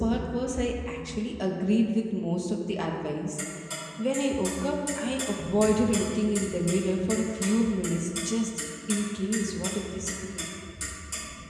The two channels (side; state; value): both; identical; correlation 1.00